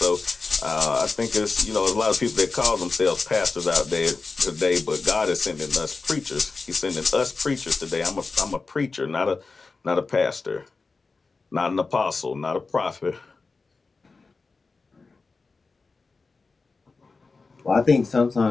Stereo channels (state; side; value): quieter; right; 4.1 dB